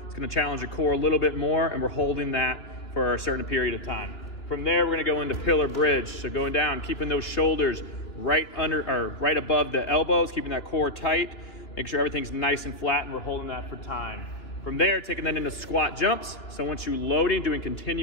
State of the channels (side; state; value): right; late; 3.1 ms